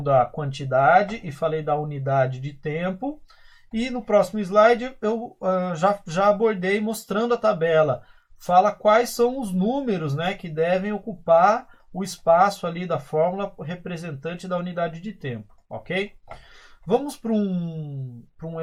da quantidade e falei da unidade de tempo. E no próximo slide eu já abordei mostrando a tabela. Fala quais são os números, né, que devem ocupar o espaço ali da fórmula representante da unidade de tempo. Ok? Vamos para um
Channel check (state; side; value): identical; both; correlation 1.00